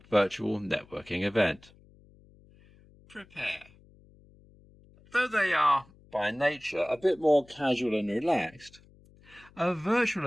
virtual networking event. Prepare. Though they are, by nature, a bit more casual and relaxed, a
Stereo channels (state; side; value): noise; left; hum, 27 dB below the sound